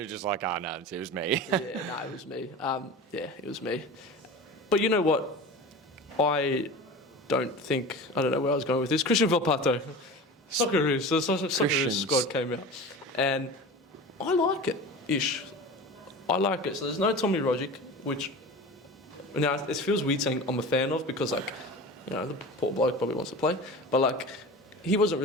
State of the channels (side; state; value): both; normal; correlation 0.33